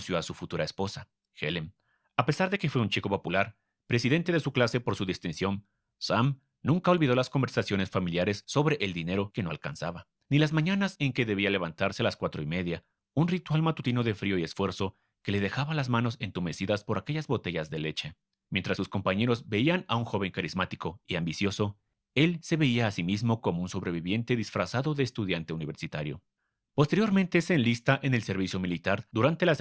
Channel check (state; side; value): identical; both; correlation 1.00